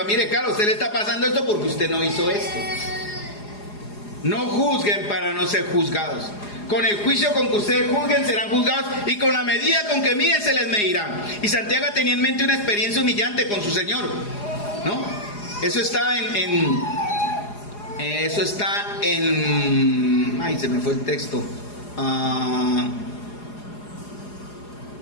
mire, Carlos, usted le está pasando esto porque usted no hizo esto. No juzguen para no ser juzgados. Con el juicio con que ustedes juzguen serán juzgados, y con la medida con que miden se les medirá. Y Santiago tenía en mente una experiencia humillante con su Señor, ¿no? Eso está en ay, se me fue el texto.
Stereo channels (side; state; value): right; late; 4.8 ms